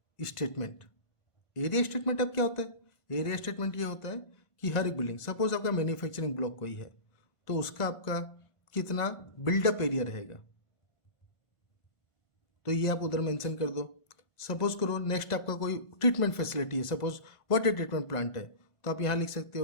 स्टेटमेंट। एरिया स्टेटमेंट अब क्या होता है, एरिया स्टेटमेंट ये होता है कि हर एक बिल्डिंग, सपोज आपका मैन्युफैक्चरिंग ब्लॉक कोई है तो उसका आपका कितना बिल्डअप एरिया रहेगा, तो ये आप उधर मेंशन कर दो। सपोज करो नेक्स्ट आपका कोई ट्रीटमेंट फैसिलिटी है, सपोज वाटर ट्रीटमेंट प्लांट है, तो आप यहाँ लिख सकते हो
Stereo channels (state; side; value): late; right; 1.5 ms